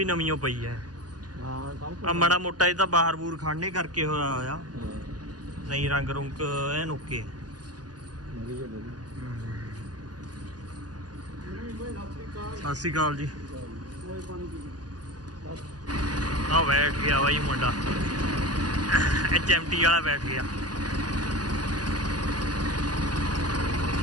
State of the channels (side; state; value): left; late; 0.69 ms